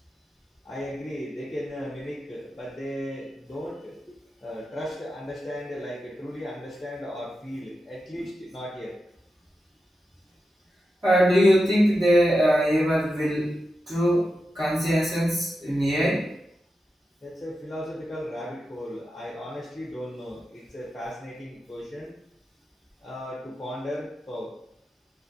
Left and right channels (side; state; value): both; normal; correlation 0.89